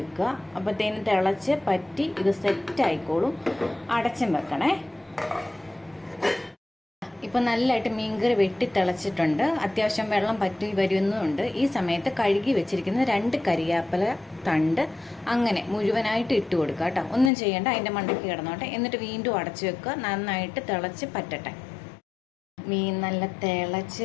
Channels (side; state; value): right; drops out; at 17.3 s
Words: അപ്പോഴത്തേനും തിളച്ച് പറ്റി ഇത് സെറ്റ് ആയിക്കോളും. അടച്ചും വെക്കണേ. ഇപ്പം നല്ലതായിട്ട് മീൻകറി വെട്ടി തിളച്ചിട്ടുണ്ട്. അത്യാവശ്യം വെള്ളം പറ്റി വരുന്നുണ്ട്. ഈ സമയത്ത് കഴുകി വെച്ചിരിക്കുന്ന 2 കരിയാപ്പില തണ്ട് അങ്ങനെ മുഴുവനായിട്ട് ഇട്ട് കൊടുക്കുക കേട്ടോ. ഒന്നും ചെയ്യേണ്ട, അതിൻ്റെ മണ്ടയ്ക്ക് കിടന്നോട്ടെ. എന്നിട്ട് വീണ്ടും അടച്ചു വെക്കുക. നന്നായിട്ട് തിളച്ച് പറ്റട്ടെ. മീൻ നല്ല